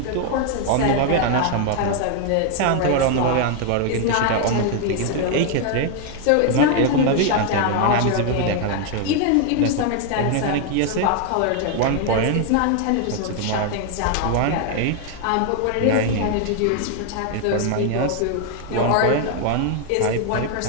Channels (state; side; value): different; both; correlation 0.00